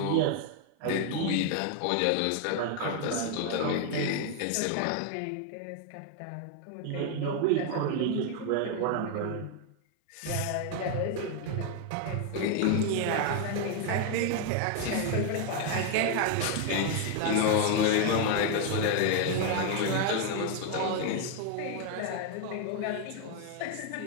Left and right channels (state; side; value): different; both; correlation 0.01